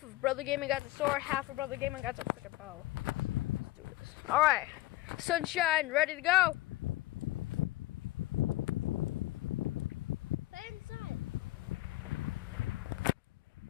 of Brother Gaming got the sword. Half of Brother Gaming got the freaking bow. Let's do this. All right, Sunshine, ready to go. Play inside.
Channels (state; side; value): quieter; right; 17.9 dB